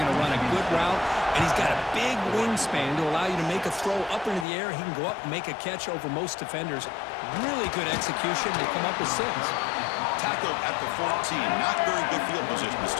to run a good route, and he's got a big wingspan to allow you to make a throw up into the air. He can go up and make a catch over most defenders. Really good execution to come up with 6. Tackled at the 14. Not very good field position to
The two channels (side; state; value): right; drops out; at 4.5 s